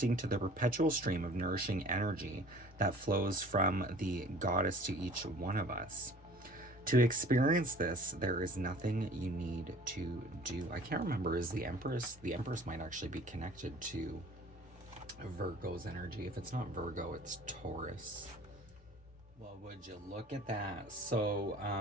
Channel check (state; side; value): normal; both; correlation 0.49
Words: to the perpetual stream of nourishing energy that flows from the goddess to each one of us. To experience this, there is nothing you need to do. I can't remember, is the Empress? The Empress might actually be connected to Virgo's energy. If it's not Virgo, it's Taurus. Well, would you look at that? So